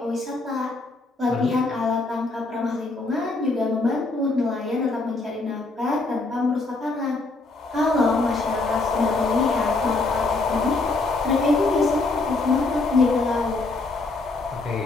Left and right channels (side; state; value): right; quieter; 3.4 dB